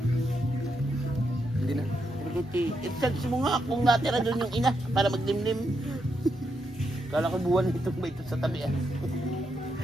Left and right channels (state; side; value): normal; both; correlation 0.82